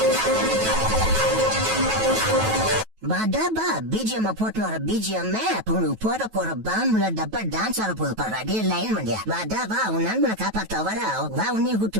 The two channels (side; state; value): left; late; 9.2 ms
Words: டப்பா பிஜிஎம் போட்டு வர பிஜிஎம் போற பாம்புல டப்பா டான்ஸ் ஆட போது பாரு. டே லைன் பண்ணியா டப்பா உன் நண்பனை காப்பாத்த வர வா உன்னையும்